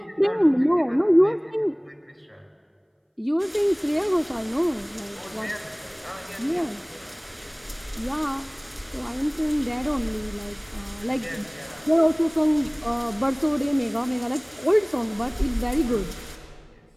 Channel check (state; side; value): identical; both; correlation 1.00